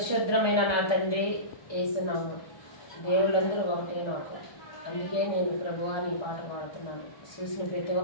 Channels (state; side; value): late; right; 1.2 ms